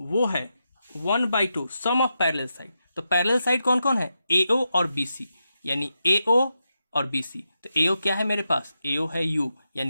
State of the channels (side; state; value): both; inverted; correlation -0.87